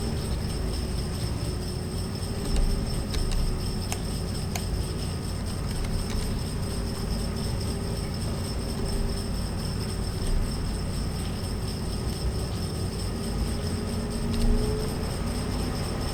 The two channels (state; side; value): identical; both; correlation 1.00